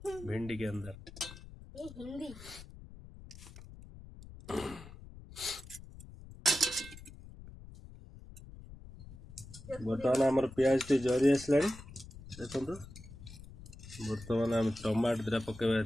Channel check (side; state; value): left; noise; rumble, 16 dB below the sound